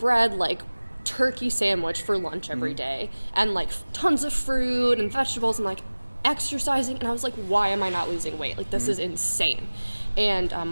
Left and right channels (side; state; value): both; inverted; correlation -1.00